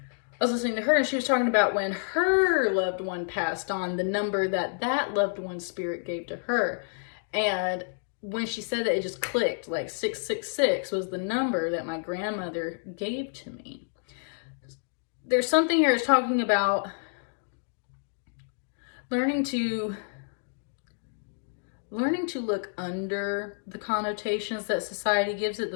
I was listening to her and she was talking about when her loved one passed on, the number that loved one's spirit gave to her. And when she said that, it just clicked, like 666 was the number that my grandmother gave to me. There's something here that's talking about learning to look under the connotations that society gives it. The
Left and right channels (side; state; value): right; silent; digital silence